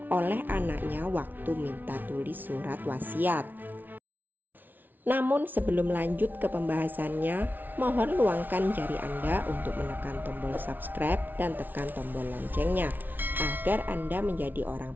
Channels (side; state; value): left; late; 0.086 ms